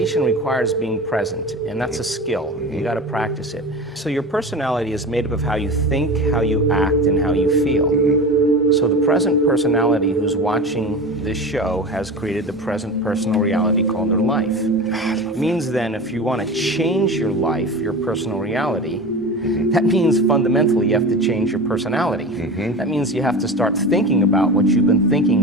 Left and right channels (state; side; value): normal; both; correlation 0.30